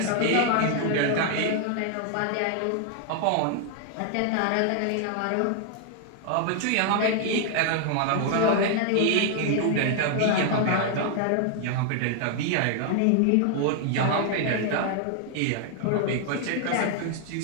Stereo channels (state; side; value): different; both; correlation 0.00